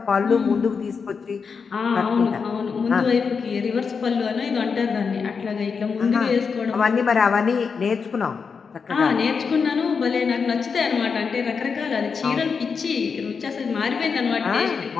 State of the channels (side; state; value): right; quieter; 5.6 dB